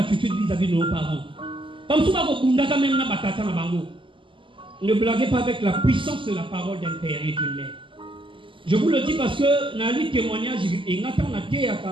vis-à-vis de nos parents? Comme souvent vous quand même na batata na bango. Ne blaguez pas avec la puissance de la parole d'un père et d'une mère. Je vous le dis parce que dans les témoignages, et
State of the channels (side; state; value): left; late; 0.25 ms